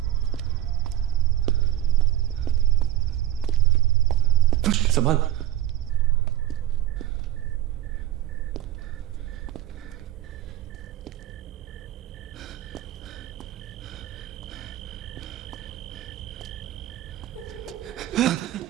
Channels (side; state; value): left; quieter; 13.3 dB